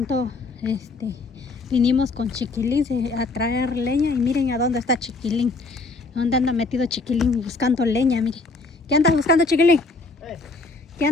vinimos con Chiquilín a traer leña y miren a dónde está Chiquilín. ¿Dónde anda metido Chiquilín buscando leña? Miren. ¿Qué andas buscando, Chiquilín? ¿Qué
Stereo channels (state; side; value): quieter; right; 3.6 dB